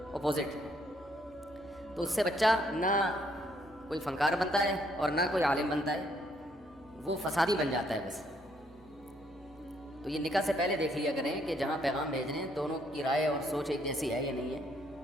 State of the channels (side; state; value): both; normal; correlation 0.70